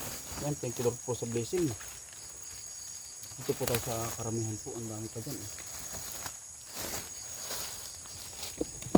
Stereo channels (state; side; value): identical; both; correlation 1.00